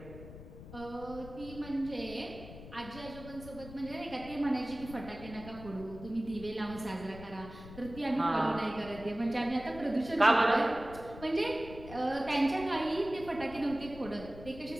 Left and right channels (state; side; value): noise; left; rumble, 14 dB below the sound